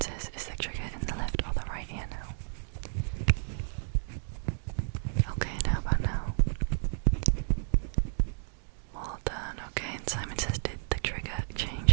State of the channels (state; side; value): silent; left; digital silence